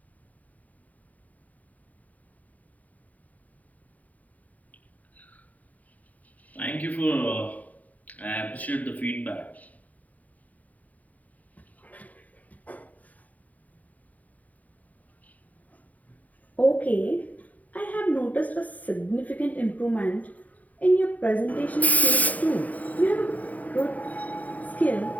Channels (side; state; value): right; late; 0.073 ms